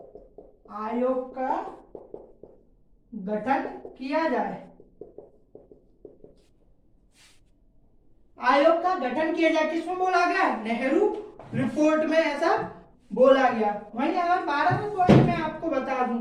आयोग का गठन किया जाए। आयोग का गठन किया जाए किसमें बोला गया? नेहरू रिपोर्ट में ऐसा बोला गया। वहीं अगर 12वें पॉइंट में आपको बता दूं,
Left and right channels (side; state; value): both; identical; correlation 1.00